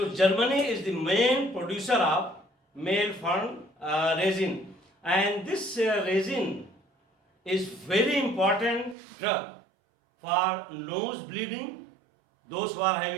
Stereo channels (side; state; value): left; drops out; at 9.0 s